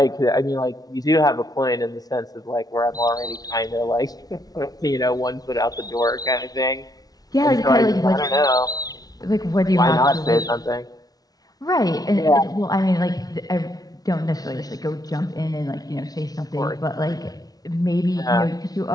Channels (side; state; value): right; late; 0.18 ms